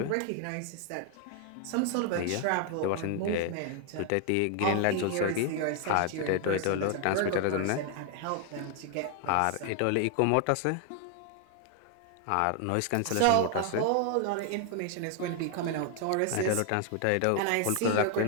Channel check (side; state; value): both; different; correlation 0.00